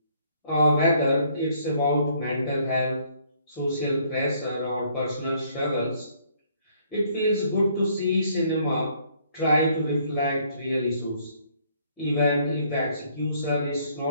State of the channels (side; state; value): both; inverted; correlation -0.65